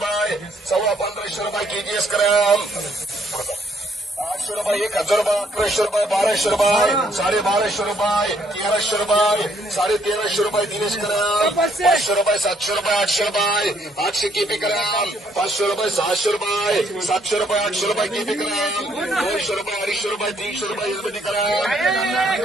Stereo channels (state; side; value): normal; both; correlation 0.69